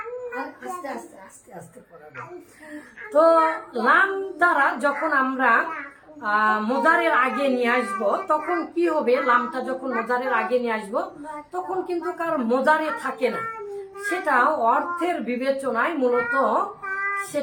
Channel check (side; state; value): both; identical; correlation 1.00